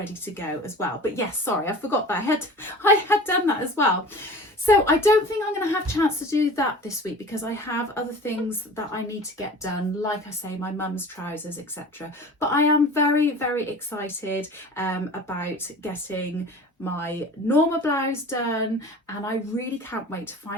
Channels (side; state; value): both; normal; correlation 0.40